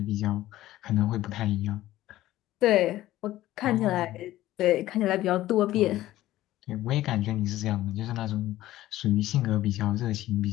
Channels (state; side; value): quieter; right; 15.1 dB